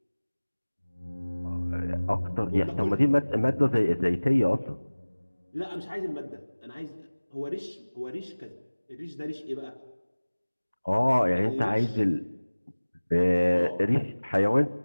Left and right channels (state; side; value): inverted; both; correlation -1.00